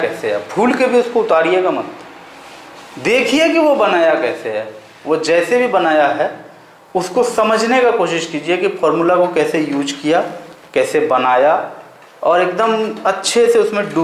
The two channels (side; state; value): both; identical; correlation 1.00